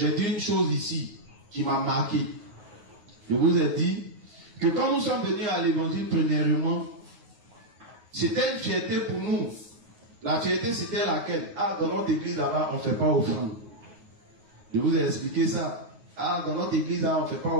dit une chose ici qui m'a marqué. Je vous ai dit que quand nous sommes venus à l'évangile, premièrement, c'était une fierté pour nous. La fierté, c'était laquelle? Ah, dans notre église là-bas, on ne fait pas offrande. Je vous ai expliqué ça. Ah, dans notre église là, on ne fait pas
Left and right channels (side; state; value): left; late; 9.5 ms